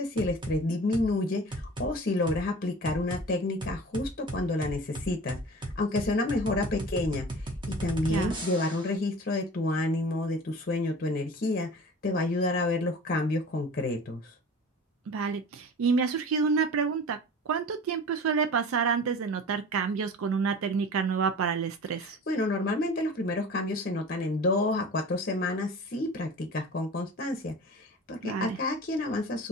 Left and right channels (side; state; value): both; normal; correlation 0.39